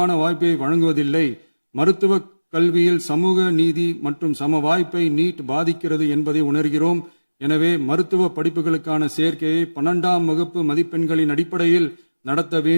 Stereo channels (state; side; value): inverted; both; correlation -1.00